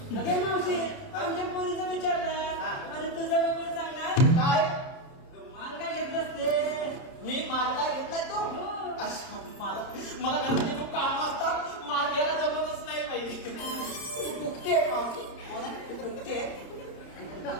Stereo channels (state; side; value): late; right; 30 ms